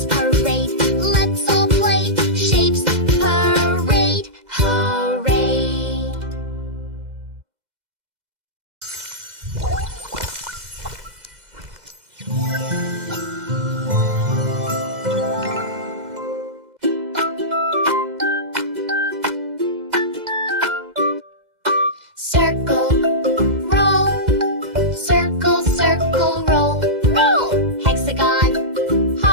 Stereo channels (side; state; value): left; late; 2.0 ms